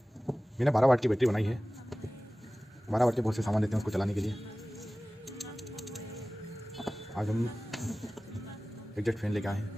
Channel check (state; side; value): normal; both; correlation 0.97